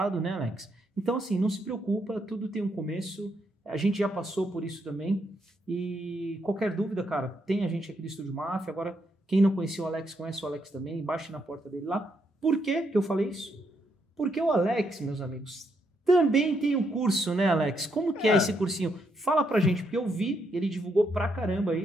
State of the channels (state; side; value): normal; both; correlation 0.77